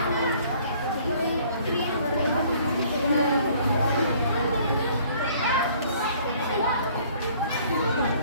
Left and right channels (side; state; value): both; inverted; correlation -0.57